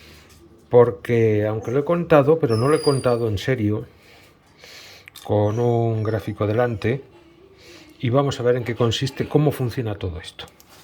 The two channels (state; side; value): identical; both; correlation 1.00